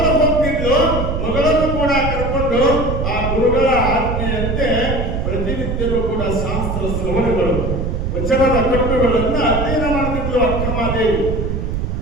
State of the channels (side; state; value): right; noise; rumble, 2 dB below the sound